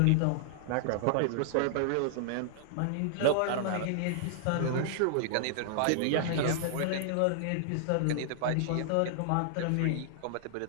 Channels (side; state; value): both; different; correlation -0.01